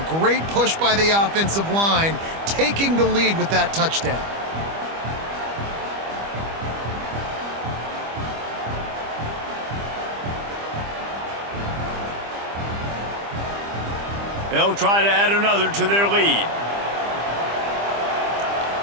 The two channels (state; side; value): late; left; 25 ms